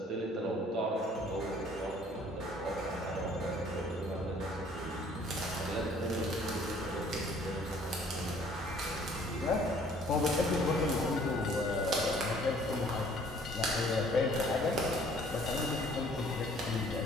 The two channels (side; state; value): both; normal; correlation 0.57